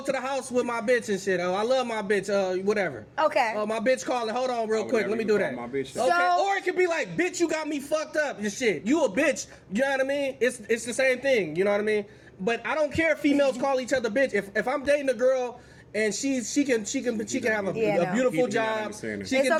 the house with my bitch and shit. Oh, I love my bitch. Whatever. Okay. Oh, my bitch calling. Hold on, real would quick. never Let me even do call that. my bitch that. Okay. So- Or it could be like, bitch, you got me fucked up and shit. You a bitch. You know what I mean? It's the same thing. You know what I mean? But I don't care if females call each other bitch. If I'm dating a girl. And she can have a, Yeah, a no. beautiful You're not job. understanding. She It's can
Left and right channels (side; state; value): both; identical; correlation 1.00